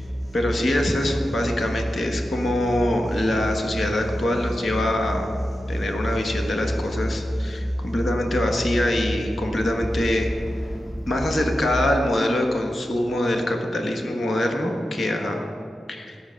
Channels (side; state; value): both; normal; correlation 0.91